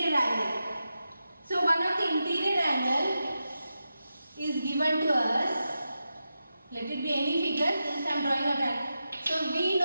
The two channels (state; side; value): inverted; both; correlation -0.90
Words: angle. So one of the interior angle is given to us. Let it be any figure. Since I am drawing a triangle. So we